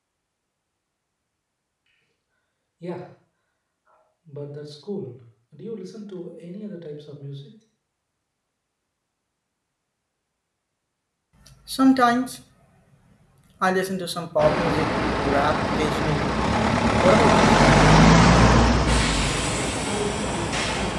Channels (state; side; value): identical; both; correlation 1.00